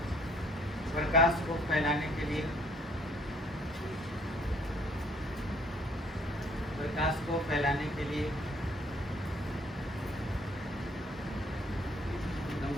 प्रकाश को फैलाने के लिए, प्रकाश को फैलाने के लिए।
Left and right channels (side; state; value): both; normal; correlation 0.61